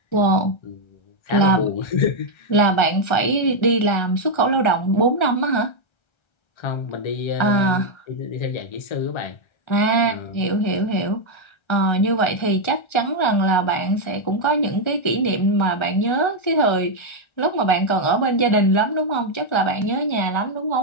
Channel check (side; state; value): right; late; 1.3 ms